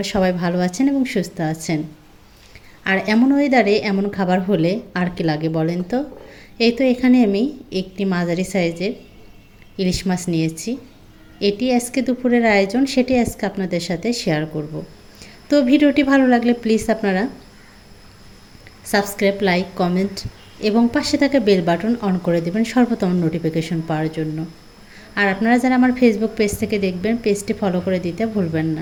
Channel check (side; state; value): both; identical; correlation 1.00